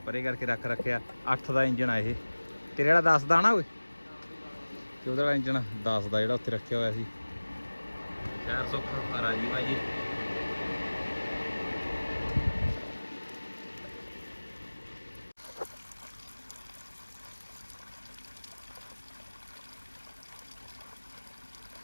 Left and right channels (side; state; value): both; inverted; correlation -1.00